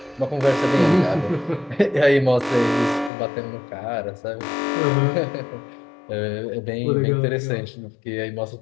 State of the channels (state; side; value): drops out; right; at 3.1 s